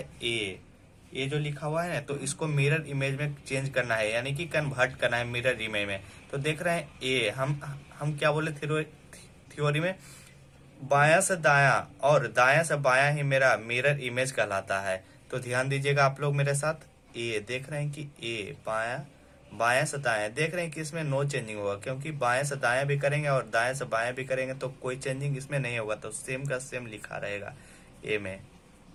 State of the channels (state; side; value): identical; both; correlation 1.00